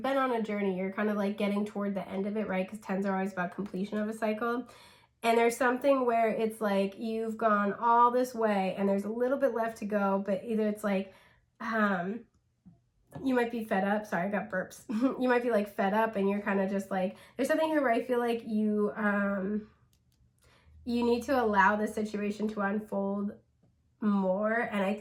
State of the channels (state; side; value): identical; both; correlation 1.00